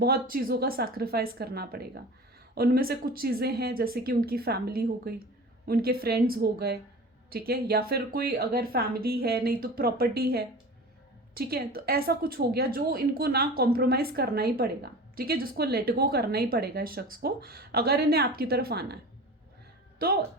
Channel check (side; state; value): both; normal; correlation 0.36